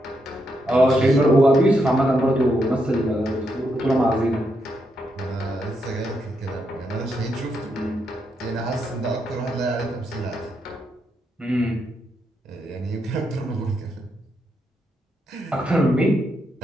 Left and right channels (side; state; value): both; normal; correlation 0.80